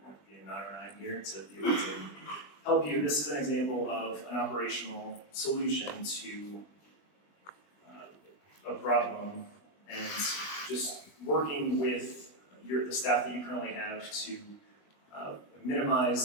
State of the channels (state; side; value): late; right; 20 ms